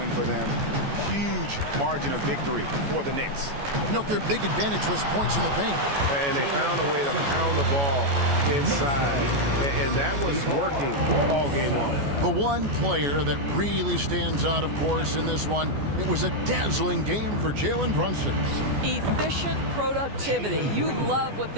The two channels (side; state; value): left; late; 14 ms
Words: for them. Huge margin of victory for the Knicks. Note their big advantage was points in the paint. And they found a way to pound the ball inside. And that was working all game long. The one player that really stands out, of course, in this one, it was a dazzling game for Jalen Brunson. Efficient productivity. You love what